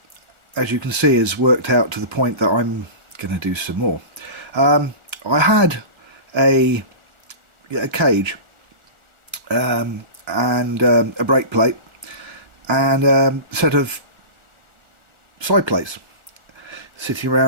as you can see, has worked out to the point that I'm going to do some more. I had a cage and a brake plate and a set of side plates sitting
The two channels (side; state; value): left; late; 1.4 ms